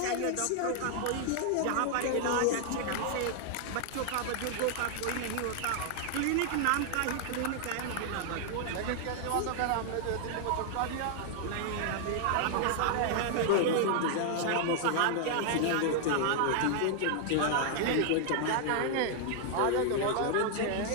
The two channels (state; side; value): different; both; correlation 0.00